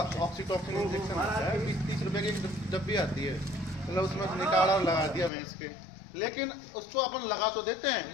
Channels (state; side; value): drops out; right; at 5.3 s